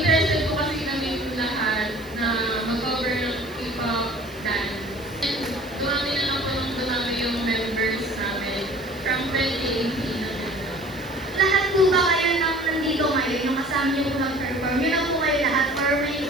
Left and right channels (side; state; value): right; noise; hiss, 23 dB below the sound